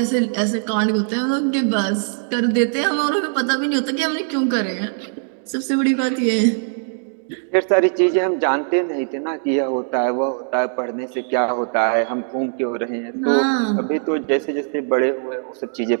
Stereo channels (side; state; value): left; silent; digital silence